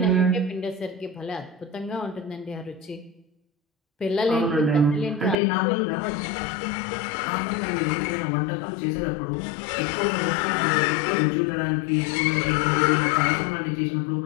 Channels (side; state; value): right; drops out; at 5.4 s